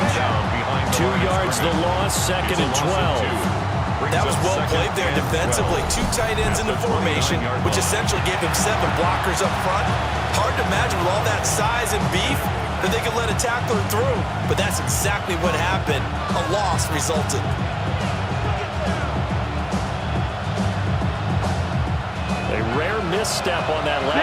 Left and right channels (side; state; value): both; identical; correlation 1.00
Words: 2 yards the loss, 2nd and 12. That was well played there defensively. 2 tight ends in the formation, which essentially gave him 7 blockers up front. Hard to imagine with all that size and beef that they could let a tackler through. But that's exactly what happened. A loss resulted. A rare misstep on that